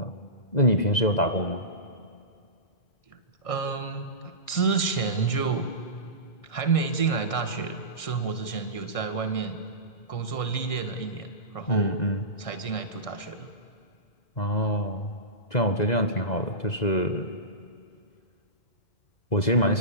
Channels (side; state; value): right; late; 1.6 ms